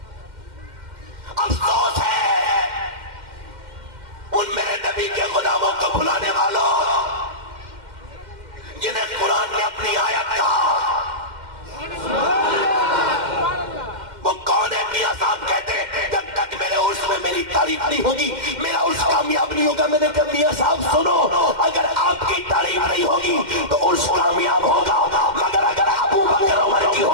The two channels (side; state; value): left; late; 2.1 ms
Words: افسوس ہے ان میرے نبی کے غلاموں کو بھلانے والوں جنہیں قرآن نے اپنی آیت کہا. وہ کون ہے؟ میاں صاحب کہتے ہیں جب تک میرے عرس میں میری تعریف نہیں ہوگی میرا عرس کامیاب نہیں ہوگا. میں نے کہا میاں صاحب سنو، اگر آپ کی تعریف نہیں ہوگی تو عرس کامیاب ہوگا، مگر اگر ابو بکر عمر کی